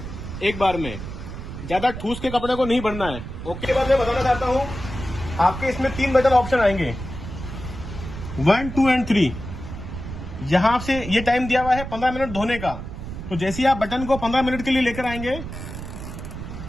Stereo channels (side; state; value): right; noise; rumble, 9 dB below the sound